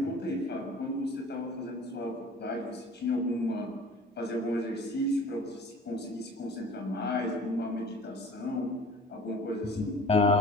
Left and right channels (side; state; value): both; normal; correlation 0.45